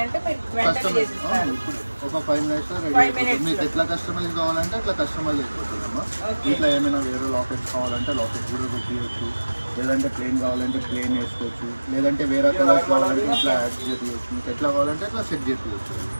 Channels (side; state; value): both; inverted; correlation -1.00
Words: అంటే మీరు వెంటనే చేసిస్తారు. ఒక 5 మినిట్స్ రెడీ. మీకు ఎట్లా కస్టమైజ్ కావాలంటే అట్లా కస్టమైజ్ అయిపోతుందమ్మా. ఇట్లా ఏమైనా వేరే లాకెట్స్ కావాలంటే లాకెట్ కూడా పెట్టియచ్చు, లేదంటే ప్లేన్ కావాలంటే ప్లేన్ వేసుకోవచ్చు, లేదంటే వేరే కలర్స్ కావాలంటే ఇట్లా యాడ్ చేయవచ్చు. మీకు ఎట్లా కావాలంటే అట్లా సెట్ చేయవచ్చు.